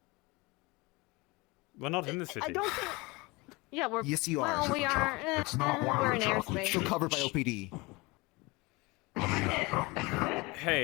We're not in the city. I don't think. Yeah, we're. Yes, you are. Well, we are. It's not one we're of in the chocolates. airspace. Still covered by OPD.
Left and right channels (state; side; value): quieter; right; 24.6 dB